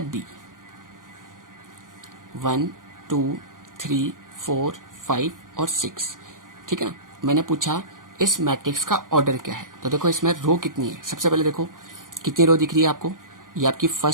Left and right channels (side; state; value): left; late; 0.90 ms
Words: B, 1 2 3 4 5 और 6। ठीक है ना, मैंने पूछा इस मैट्रिक्स का ऑर्डर क्या है। तो देखो इसमें रो कितनी है। सबसे पहले देखो कितनी रो दिख रही है आपको? ये आपकी